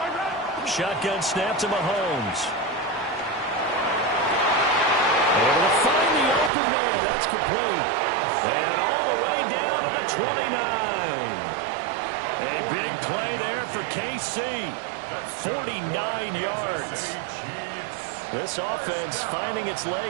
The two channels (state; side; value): drops out; left; at 6.5 s